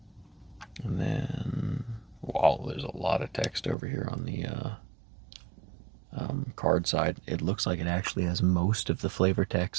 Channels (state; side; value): drops out; left; at 3.8 s